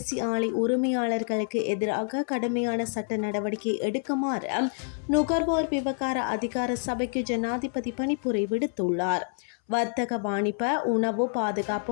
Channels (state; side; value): silent; right; 60 dB below the other